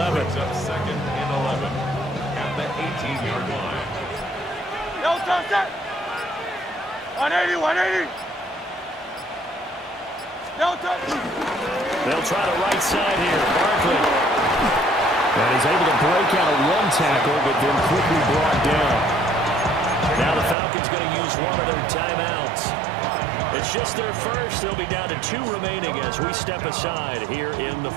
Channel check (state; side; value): drops out; left; at 20.6 s